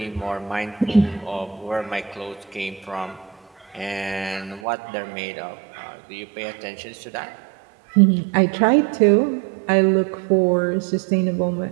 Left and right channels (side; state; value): left; drops out; at 4.6 s